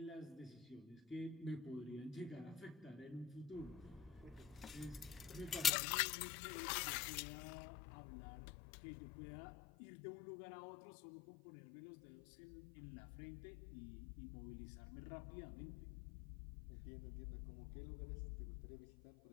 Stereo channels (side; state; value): right; drops out; at 5.7 s